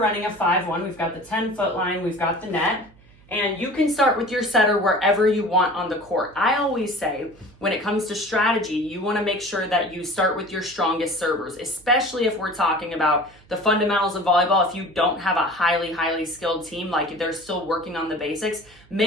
a 5-1, we've got the 10-foot line, we've got the net. And you can start with your setter wherever you want on the court. I always say, when it comes to strategy, you want to make sure that you start with your strongest servers, especially if we're talking about the fundamentals of volleyball. If you don't have a highly skilled team, like they're still working on the basics,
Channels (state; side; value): noise; right; hum, 27 dB below the sound